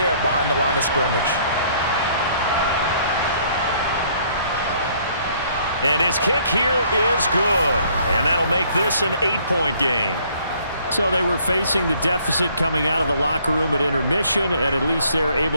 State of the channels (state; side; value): inverted; both; correlation -0.62